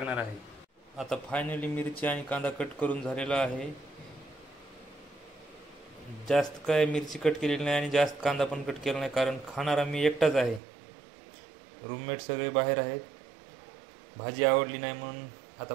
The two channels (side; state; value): left; drops out; at 10.6 s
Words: आहे. आता फायनली मिरची आणि कांदा कट करून झालेला आहे. जास्त काय मिरची कट केलेली नाही आणि जास्त कांदा पण कट केला नाही, कारण खाणारा मी एकटाच आहे. रूममेट सगळे बाहेर आहेत. भाजी आवडली नाही म्हणून आता